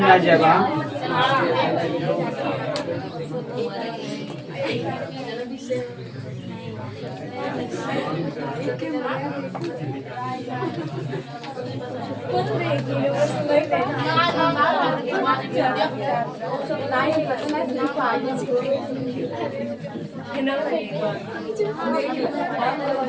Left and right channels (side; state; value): both; identical; correlation 1.00